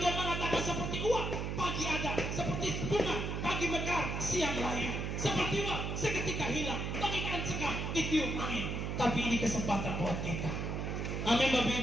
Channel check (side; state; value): right; noise; hum, 2 dB below the sound